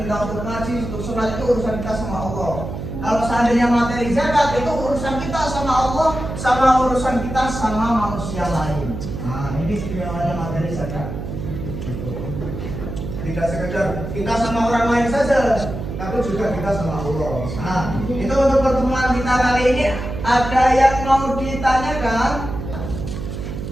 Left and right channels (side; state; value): right; noise; hum, 7 dB below the sound